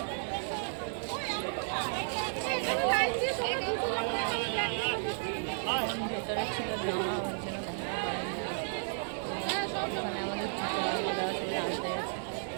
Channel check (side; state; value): left; silent; digital silence